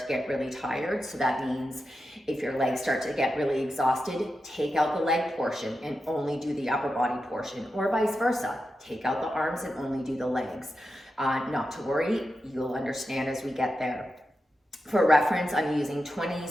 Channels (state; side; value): normal; both; correlation 0.89